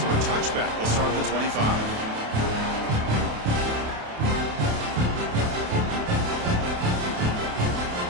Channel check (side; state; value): left; late; 28 ms